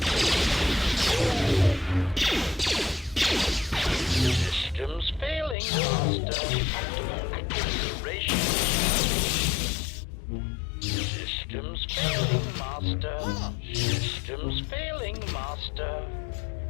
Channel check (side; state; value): right; drops out; at 5.6 s